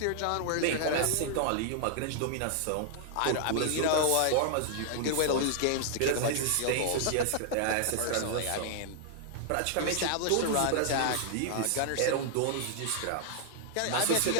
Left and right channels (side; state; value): both; different; correlation -0.01